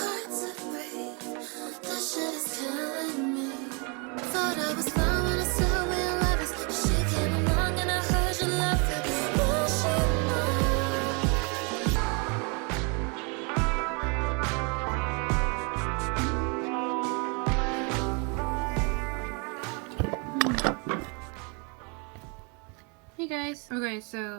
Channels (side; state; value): left; quieter; 33.9 dB